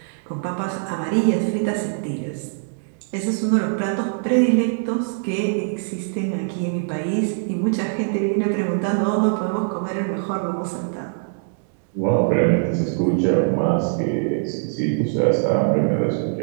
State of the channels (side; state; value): left; silent; digital silence